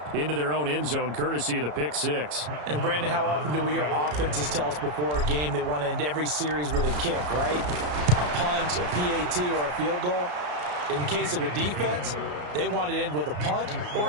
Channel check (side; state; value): left; late; 34 ms